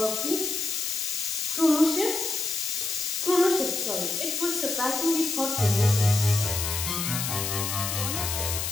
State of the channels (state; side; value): noise; left; hiss, 2 dB below the sound